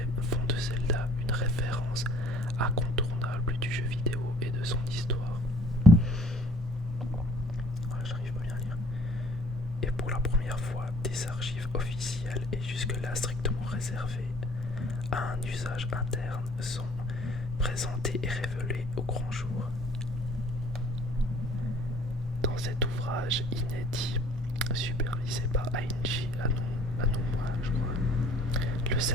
font de Zelda une référence incontournable du jeu vidéo et de son histoire. Voilà, j'arrive pas bien à lire. Et pour la première fois, des archives officielles et jusque-là strictement réservées à un usage interne sont présentées et révélées au grand jour. Dans cet ouvrage inédit, supervisé par Ainji Aonuma, je crois, le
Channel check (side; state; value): both; normal; correlation 0.54